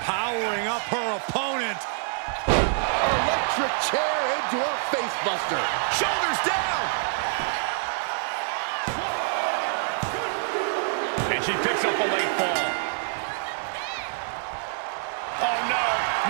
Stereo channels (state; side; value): silent; left; 61 dB below the other